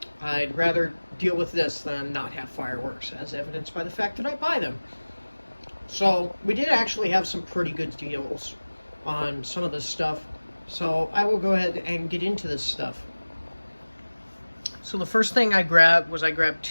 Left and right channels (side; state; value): both; inverted; correlation -1.00